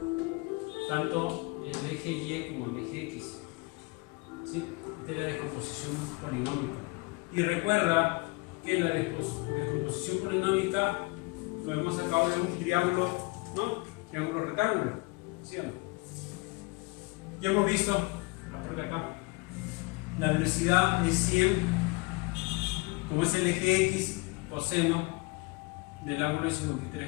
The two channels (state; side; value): quieter; right; 26.4 dB